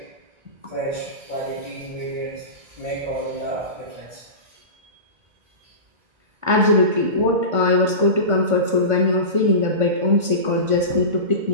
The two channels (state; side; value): late; left; 1.5 ms